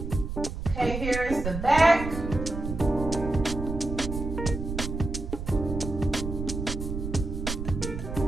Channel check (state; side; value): noise; right; rumble, 5 dB below the sound